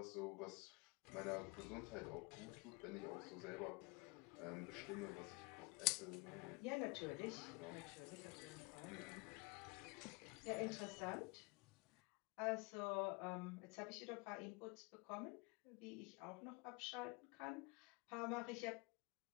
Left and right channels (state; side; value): quieter; right; 27.9 dB